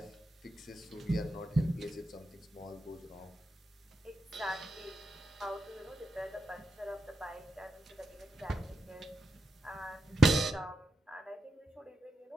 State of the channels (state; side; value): normal; both; correlation 0.86